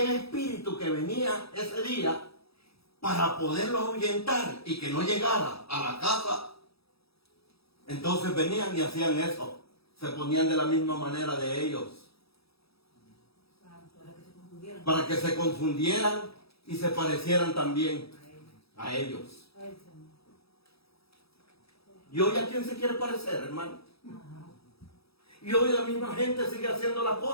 espíritu que venía ese día, para poderlo ahuyentar y que no llegara a la casa, entonces venían y hacían eso. Se ponían de la misma manera de ellos. Para que se confundieran. Para que se confundieran y se parecieran también a ellos. Ay, Señor. ¿Y hoy a quién se quiere parecer, hermano? Y hoy la misma gente sigue haciendo las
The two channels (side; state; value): right; late; 0.77 ms